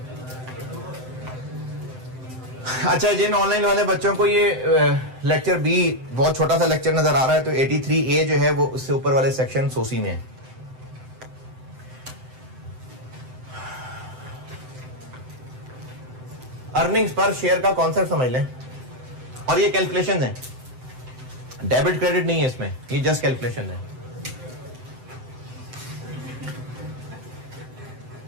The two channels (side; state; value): left; late; 7.8 ms